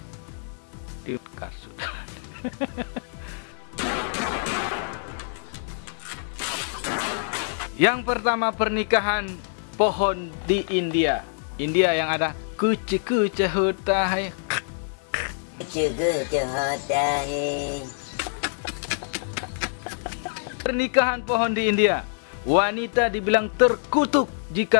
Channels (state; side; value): silent; right; digital silence